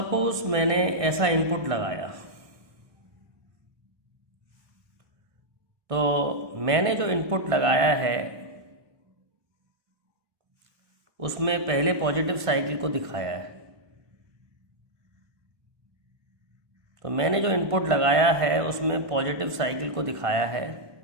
मैंने ऐसा इनपुट लगाया, तो मैंने जो इनपुट लगाया है उसमें पहले पॉजिटिव साइकिल को दिखाया है। तो मैंने जो इनपुट लगाया है उसमें पॉजिटिव साइकिल को दिखाया है।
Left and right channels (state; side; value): late; left; 1.2 ms